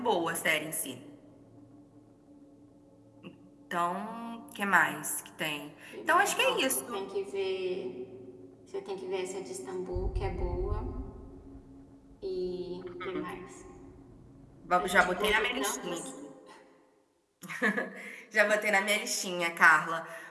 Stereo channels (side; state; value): both; identical; correlation 1.00